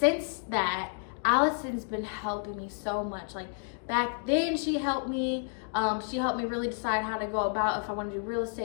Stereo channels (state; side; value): silent; right; 58 dB below the other